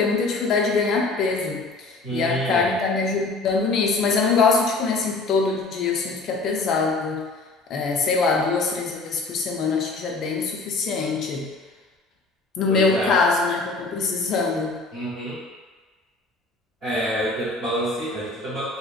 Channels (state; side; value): quieter; right; 3.5 dB